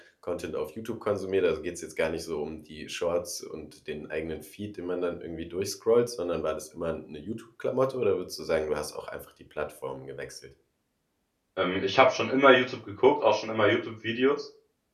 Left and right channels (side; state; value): both; identical; correlation 1.00